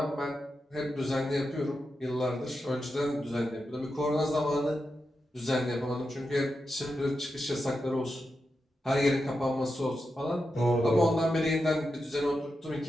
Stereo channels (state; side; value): normal; both; correlation 0.88